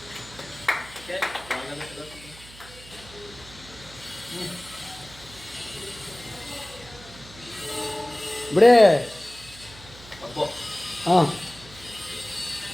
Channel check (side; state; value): right; noise; hum, 19 dB below the sound